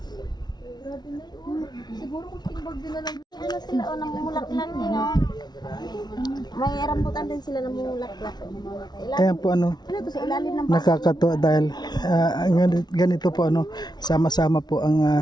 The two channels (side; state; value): right; late; 0.20 ms